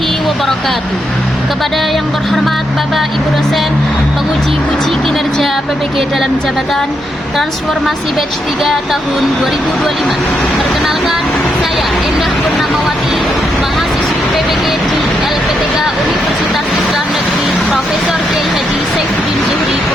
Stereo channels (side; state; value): both; normal; correlation 0.80